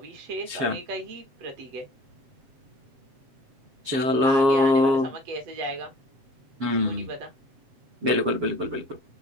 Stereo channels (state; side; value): late; left; 7.4 ms